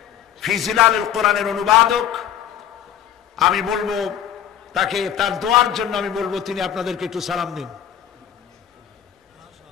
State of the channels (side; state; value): right; quieter; 10.0 dB